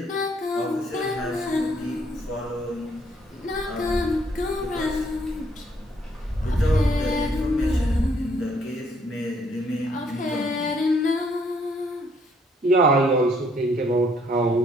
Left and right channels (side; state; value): both; normal; correlation 0.67